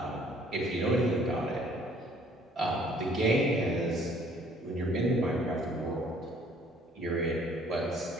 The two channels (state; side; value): normal; both; correlation 0.59